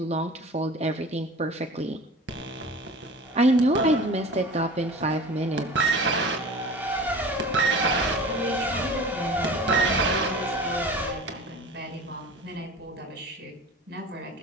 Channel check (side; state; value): both; normal; correlation 0.38